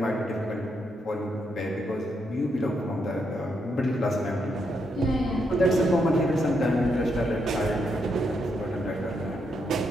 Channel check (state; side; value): normal; both; correlation 0.79